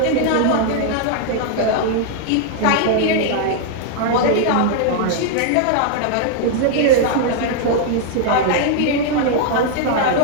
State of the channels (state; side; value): different; both; correlation -0.01